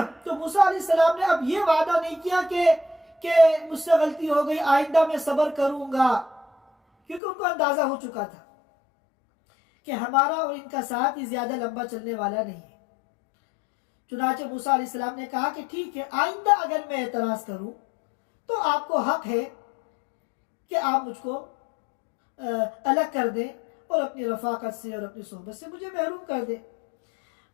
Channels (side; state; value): right; drops out; at 7.2 s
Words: تو موسیٰ علیہ السلام نے اب یہ وعدہ نہیں کیا کہ مجھ سے غلطی ہو گئی، آئندہ میں صبر کروں گا، کیونکہ ان کو اندازہ ہو چکا تھا کہ ہمارا اور ان کا ساتھ ہی زیادہ لمبا چلنے والا نہیں ہے. چنانچہ موسیٰ علیہ السلام نے کہا کہ ٹھیک ہے، آئندہ اگر میں اعتراض کروں تو آپ کو حق ہے کہ آپ مجھ کو الگ کر دیں اور اپنی رفاقت سے اور اپنی صحبت سے مجھے محروم کر دیں.